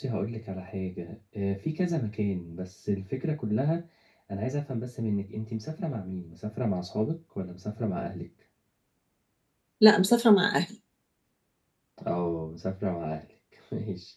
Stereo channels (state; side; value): identical; both; correlation 1.00